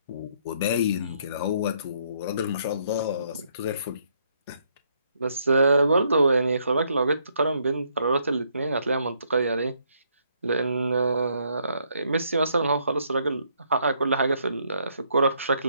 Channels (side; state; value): both; inverted; correlation -0.71